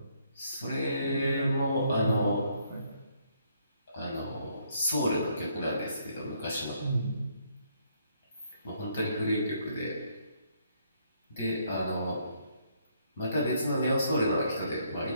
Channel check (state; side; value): inverted; both; correlation -0.70